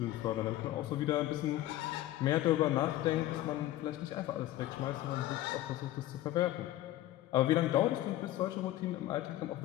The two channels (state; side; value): quieter; right; 14.8 dB